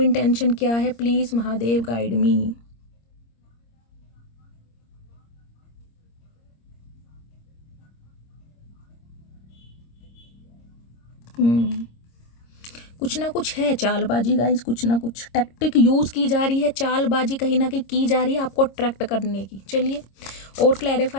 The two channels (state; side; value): late; right; 26 ms